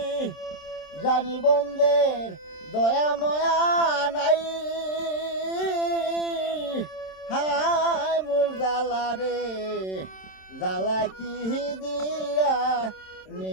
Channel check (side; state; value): right; late; 27 ms